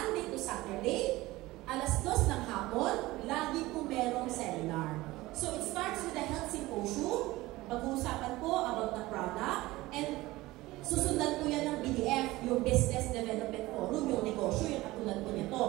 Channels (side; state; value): left; quieter; 19.0 dB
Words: to Saturday, alas 2 ng hapon, lagi po merong seminar. So it starts with a health symposium, pag-uusapan po about the product, and susundan po yan ng BDF, yung Business Development Forum, yung negosyo, yung katulad po nito.